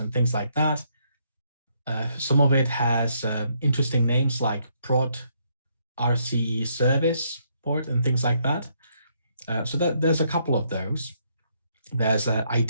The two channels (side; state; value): both; inverted; correlation -0.73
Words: things like that. Some of it has interesting names like prod RCE service port and things like that. So there's a couple of those. There's an